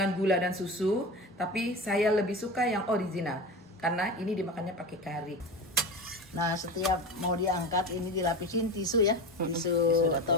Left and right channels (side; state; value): both; normal; correlation 0.27